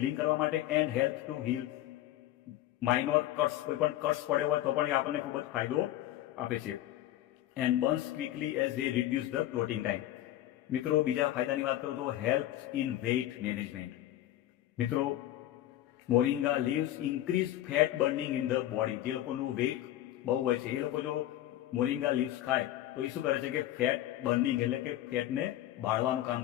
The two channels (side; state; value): right; quieter; 13.8 dB